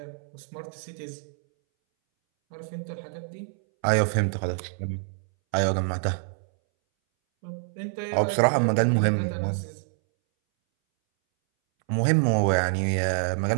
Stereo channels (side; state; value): left; silent; 61 dB below the other